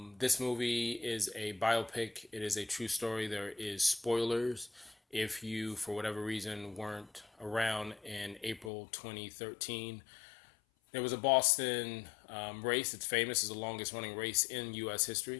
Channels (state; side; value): drops out; right; at 8.7 s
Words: This movie is a biopic. It is a true story. There is spoilers if you, for whatever reason, weren't around in April 2013. There was a Boston race. It's famous as the longest running race in U.S.